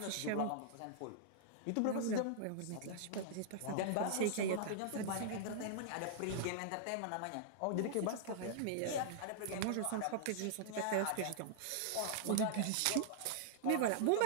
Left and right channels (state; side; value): different; both; correlation -0.01